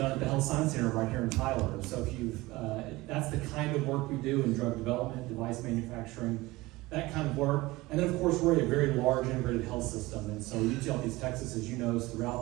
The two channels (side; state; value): left; quieter; 20.3 dB